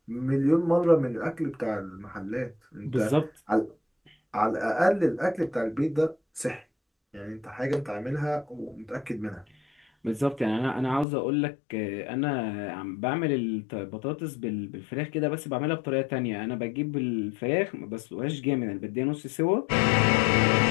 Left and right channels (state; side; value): drops out; right; at 11.1 s